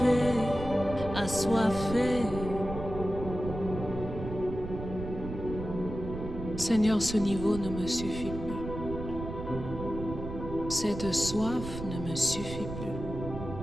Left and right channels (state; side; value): noise; right; rumble, 8 dB below the sound